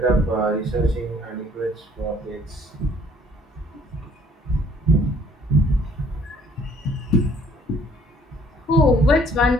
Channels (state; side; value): normal; both; correlation 0.60